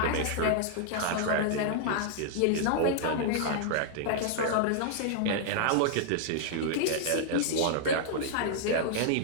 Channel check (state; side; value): different; both; correlation -0.01